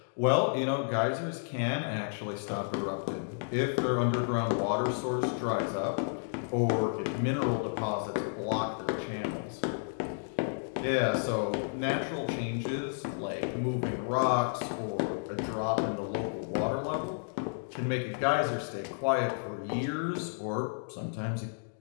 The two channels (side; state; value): right; silent; digital silence